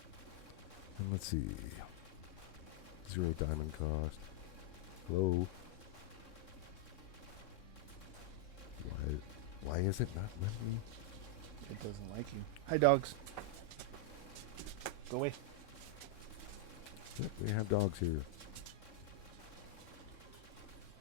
And let's see. 0 diamond cost. Low. Why is it not letting me? It doesn't like you. Hi, dogs. Go away. Yep, we have dogs here.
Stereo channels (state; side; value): late; right; 3.6 ms